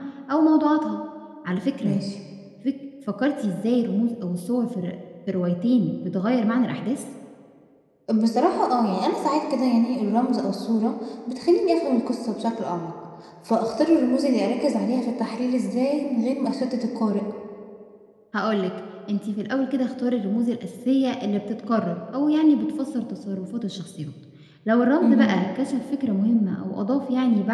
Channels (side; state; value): both; identical; correlation 1.00